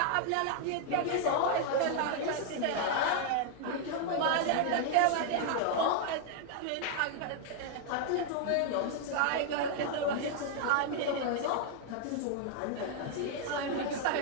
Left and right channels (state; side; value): different; both; correlation 0.00